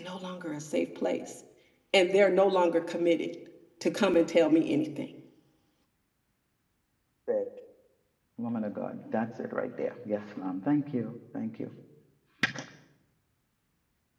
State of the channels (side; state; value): both; identical; correlation 1.00